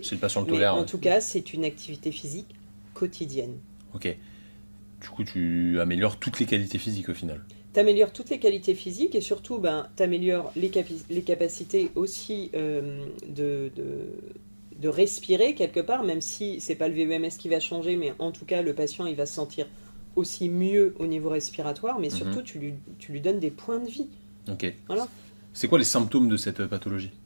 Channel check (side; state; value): both; inverted; correlation -1.00